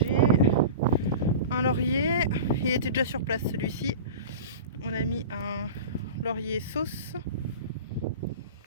Un laurier, il était déjà sur place celui-ci. On a mis un laurier sauce.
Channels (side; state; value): both; inverted; correlation -0.33